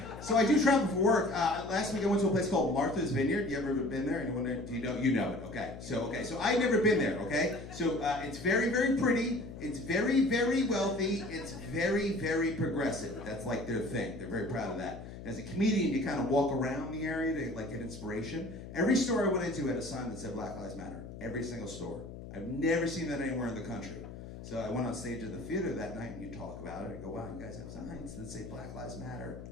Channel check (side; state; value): left; noise; hum, 12 dB below the sound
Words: So I do travel for work. Last week I went to a place called Martha's Vineyard. You ever been there? Anyone there? Do you know? You know it. Okay. So I've never been there. Okay. So it's very, very pretty. It's very, very wealthy. It's very, very progressive. That's like their thing. They're very proud of that. As a comedian, you kind of walk around the area to like get inspiration. Every store I went into had a sign that said Black Lives Matter. Every single store. I've never seen that anywhere in the country. So I went on stage at the theater that night and you talk about it. I go, "Wow, you guys have signs that say Black Lives Matter